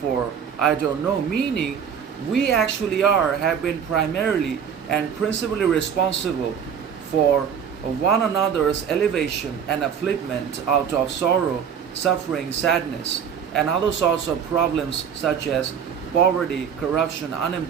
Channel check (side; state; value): left; quieter; 7.7 dB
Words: I don't know." Meaning, we actually have been primarily and principally responsible for one another's elevation and upliftment out of sorrow, suffering, sadness, and other sorts of problems such as poverty, corruption,